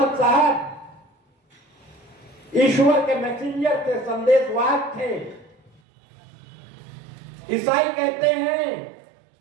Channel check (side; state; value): left; drops out; at 5.7 s